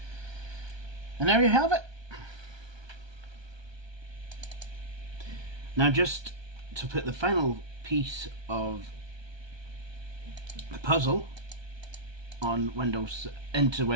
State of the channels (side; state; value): left; late; 1.2 ms